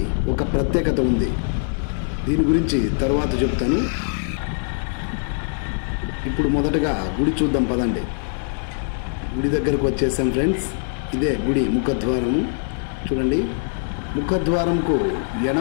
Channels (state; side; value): silent; right; 64 dB below the other